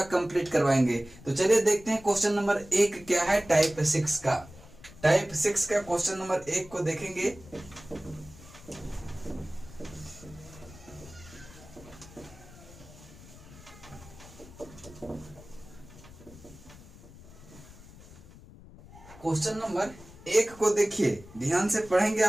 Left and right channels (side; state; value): left; noise; rumble, 19 dB below the sound